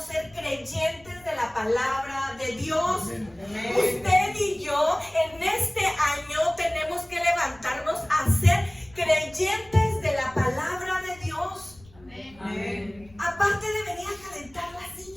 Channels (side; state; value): left; noise; rumble, 26 dB below the sound